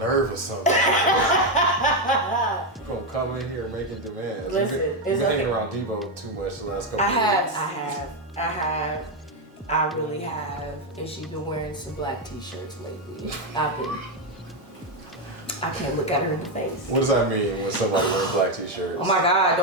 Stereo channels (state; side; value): normal; both; correlation 0.06